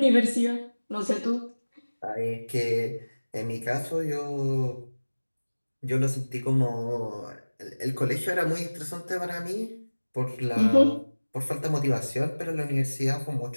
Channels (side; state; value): both; inverted; correlation -1.00